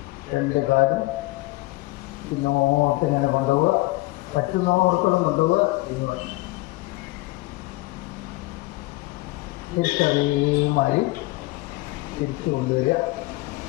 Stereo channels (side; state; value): right; quieter; 20.6 dB